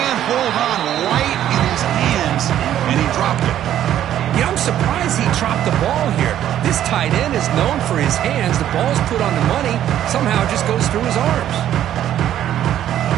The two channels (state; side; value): quieter; left; 11.4 dB